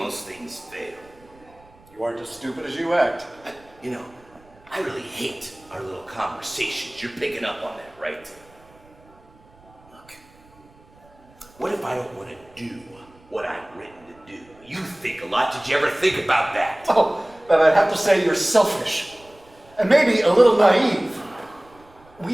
things fail. You aren't as stupid as you act. You know, I really hate our little conversations. You're picking up on that, right? Look, what if I don't want to do what I'm written to do? You think a lot. Did you ever think about that? Oh, but I'd have to say you're selfish. And maybe a little naive.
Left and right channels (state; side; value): noise; right; rumble, 28 dB below the sound